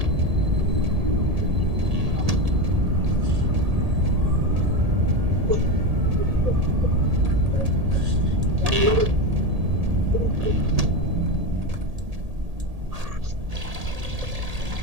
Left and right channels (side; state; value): left; late; 1.8 ms